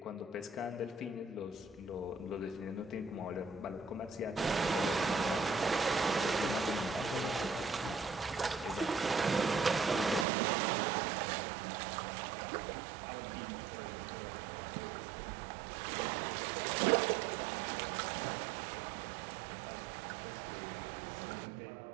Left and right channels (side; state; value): left; drops out; at 10.2 s